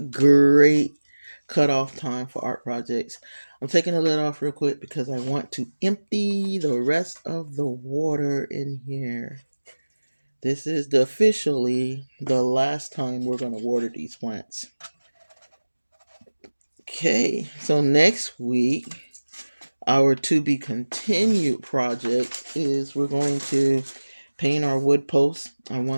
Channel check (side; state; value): both; inverted; correlation -1.00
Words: great cutoff time for art projects. I'm taking the lid off real quick because I want to empty the rest of the water in here. This is officially the last time we're going to water these plants. Okay, so next week, our to be continued project is we're going to paint our wood posts. I